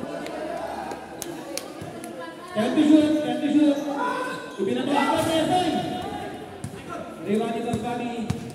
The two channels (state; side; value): identical; both; correlation 1.00